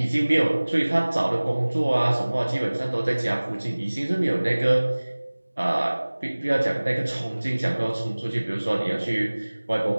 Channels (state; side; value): inverted; both; correlation -1.00